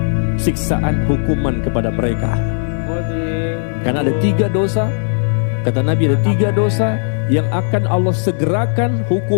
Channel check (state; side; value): silent; right; digital silence